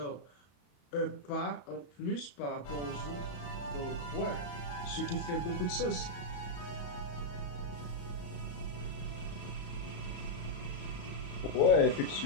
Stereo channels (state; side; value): late; right; 34 ms